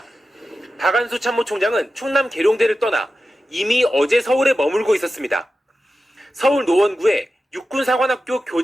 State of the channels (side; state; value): both; normal; correlation 0.93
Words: 박안수 참모총장은 충남 계룡대를 떠나 이미 어제 서울에 머물고 있었습니다. 서울 노원구에 육군사관학교